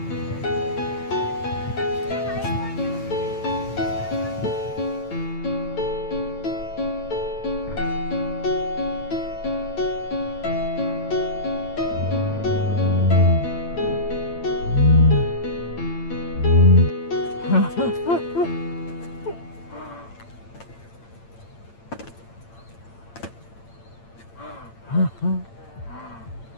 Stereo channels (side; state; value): right; late; 8.8 ms